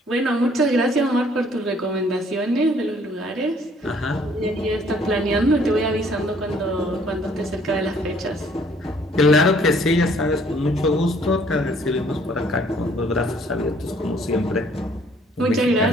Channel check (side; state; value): both; normal; correlation 0.61